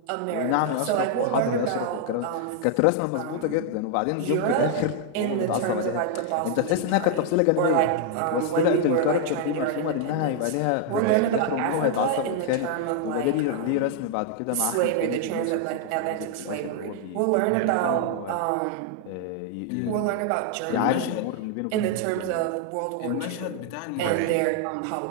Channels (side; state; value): both; different; correlation 0.00